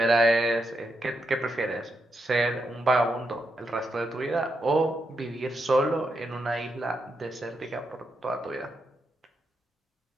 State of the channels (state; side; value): normal; both; correlation 0.83